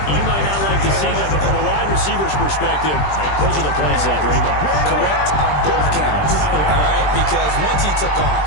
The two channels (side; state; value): right; late; 20 ms